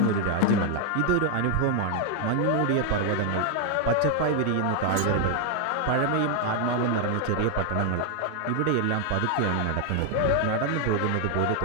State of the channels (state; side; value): different; both; correlation 0.00